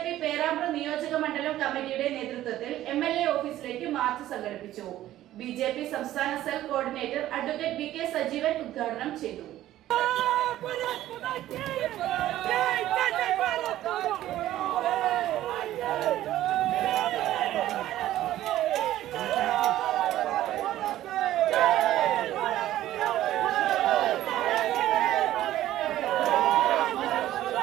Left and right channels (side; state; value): left; quieter; 13.8 dB